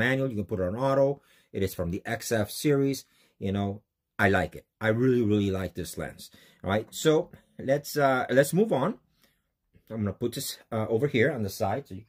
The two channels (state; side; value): identical; both; correlation 1.00